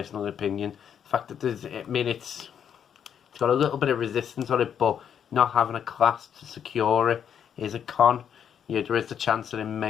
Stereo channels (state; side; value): quieter; right; 8.4 dB